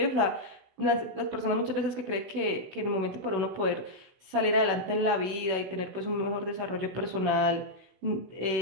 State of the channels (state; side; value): late; left; 16 ms